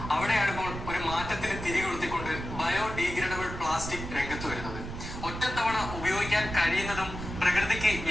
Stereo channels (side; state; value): right; noise; rumble, 8 dB below the sound